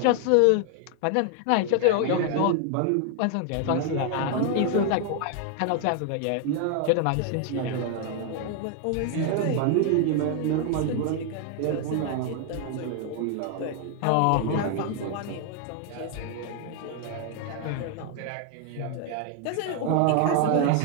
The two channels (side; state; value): both; different; correlation 0.00